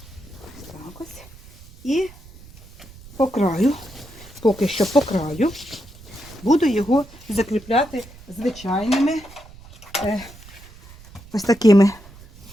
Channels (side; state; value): right; noise; rumble, 20 dB below the sound